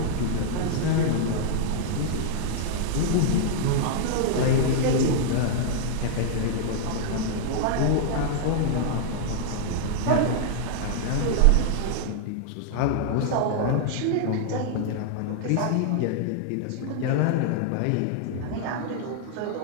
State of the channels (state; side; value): different; both; correlation 0.00